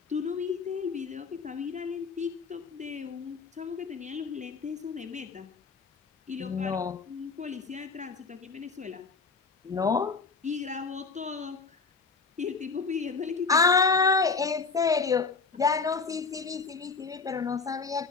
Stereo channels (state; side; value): quieter; right; 4.7 dB